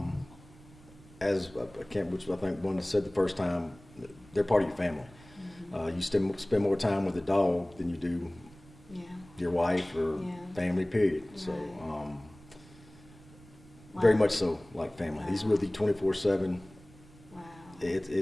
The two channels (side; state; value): right; noise; rumble, 23 dB below the sound